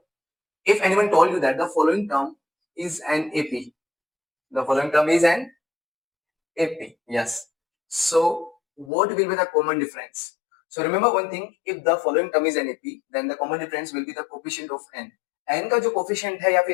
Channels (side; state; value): right; drops out; at 8.9 s